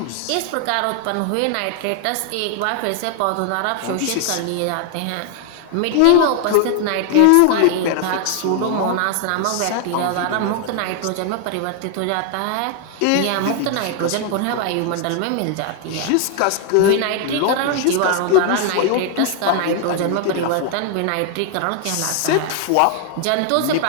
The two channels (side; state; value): both; different; correlation 0.00